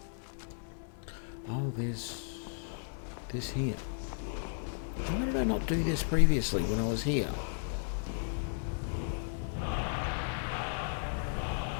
Oh, there's this here. Why did I not do this previously when I was here?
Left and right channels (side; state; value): right; silent; 55 dB below the other